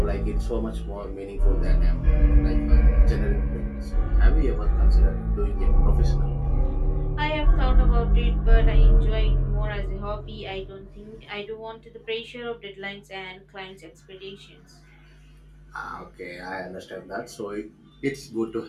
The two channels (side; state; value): both; identical; correlation 1.00